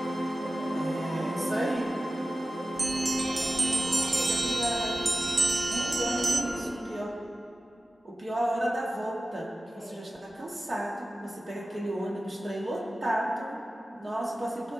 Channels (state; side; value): normal; both; correlation 0.96